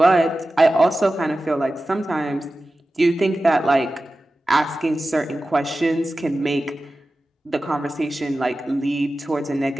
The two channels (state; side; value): normal; both; correlation 0.95